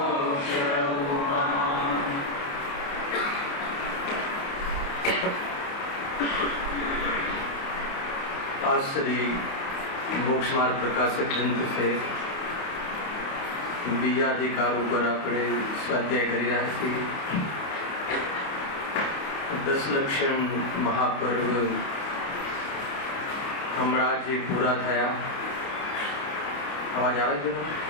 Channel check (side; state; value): right; late; 29 ms